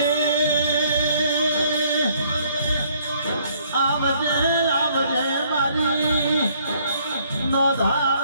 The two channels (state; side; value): inverted; both; correlation -0.64